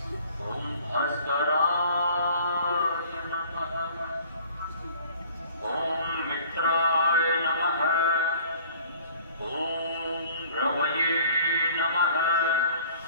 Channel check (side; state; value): both; inverted; correlation -0.52